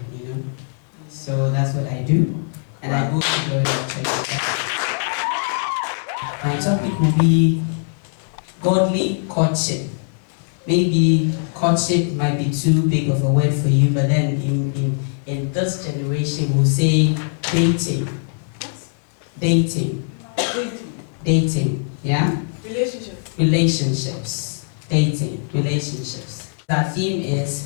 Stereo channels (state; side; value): silent; right; 65 dB below the other